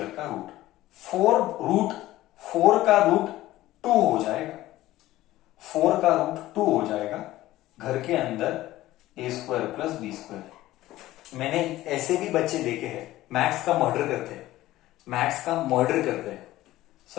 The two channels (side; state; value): right; quieter; 16.0 dB